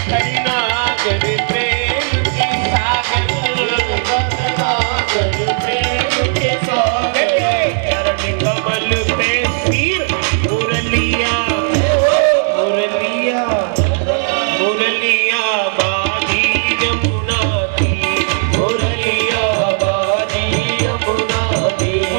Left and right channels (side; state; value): left; silent; 64 dB below the other